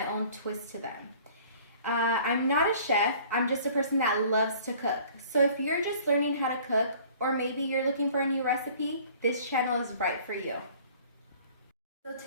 own twist to them. I'm not a chef, I'm just a person that loves to cook. So if you're just learning how to cook, or maybe you're looking for a new recipe, this channel is right for you. So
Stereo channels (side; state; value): both; inverted; correlation -0.51